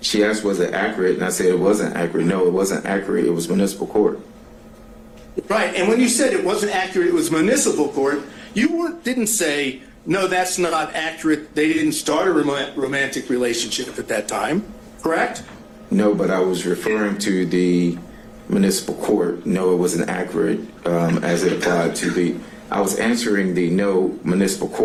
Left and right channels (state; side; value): identical; both; correlation 1.00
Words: she asked, was it accurate? And I said it wasn't accurate. No, it wasn't accurate. It was municipal court. Right, and when you said it wasn't accurate, it was municipal court, you didn't say, no, that's not accurate. They didn't start a romantic relationship at that time, correct? No, but I was referring to the municipal court. No, it wasn't accurate as it applied to I was answering the no municipal